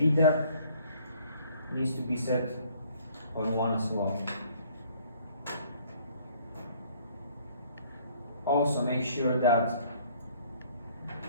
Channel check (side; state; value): both; inverted; correlation -0.59